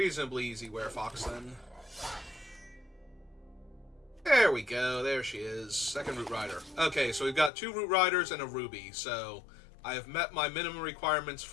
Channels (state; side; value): drops out; right; at 7.5 s